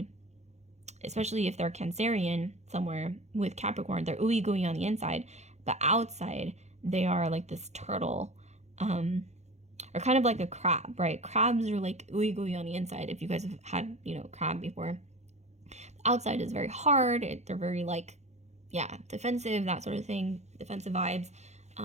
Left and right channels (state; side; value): late; left; 0.33 ms